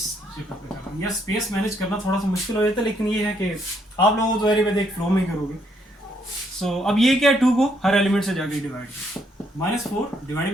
जगह पे कर रहा हूँ। यह स्पेस मैनेज करना थोड़ा सा मुश्किल हो जाता है, लेकिन ये है कि आप लोगों तो एरी एक फ्लो में करोगे। सो अब ये क्या है, 2 को हर एलिमेंट से जाके डिवाइड, -4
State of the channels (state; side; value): normal; both; correlation 0.72